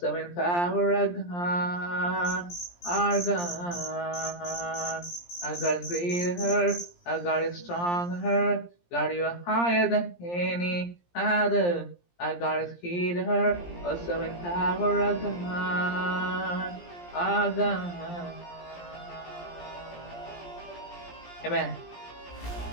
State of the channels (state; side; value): late; right; 17 ms